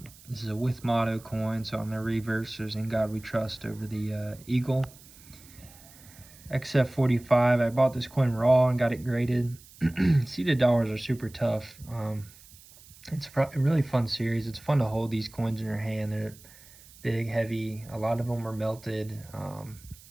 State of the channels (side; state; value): right; noise; hiss, 22 dB below the sound